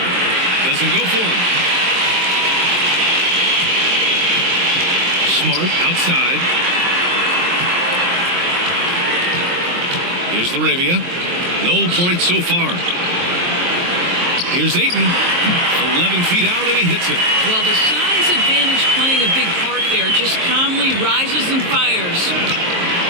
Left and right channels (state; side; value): late; left; 23 ms